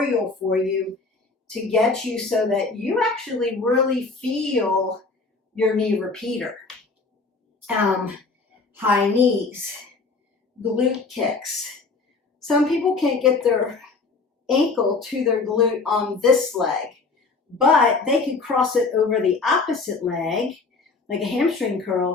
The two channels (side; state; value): right; quieter; 4.1 dB